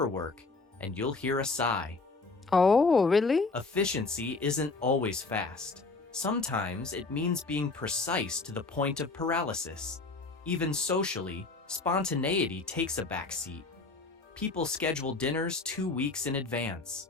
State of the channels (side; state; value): right; quieter; 3.8 dB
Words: and you'll hear a sigh. Oh, really? Efficiency isn't always fast. Sometimes it means being precise to the point of paralysis. Even socially, spontaneity takes a backseat. People schedule dinners 2 weeks in